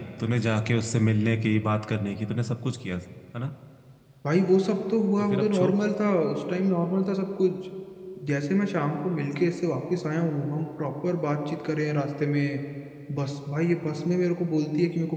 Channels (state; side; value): identical; both; correlation 1.00